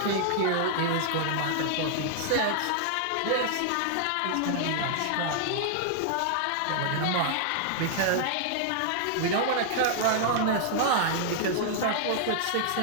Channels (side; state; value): both; different; correlation -0.01